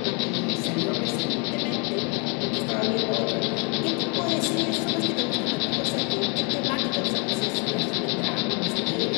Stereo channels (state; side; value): quieter; right; 34.4 dB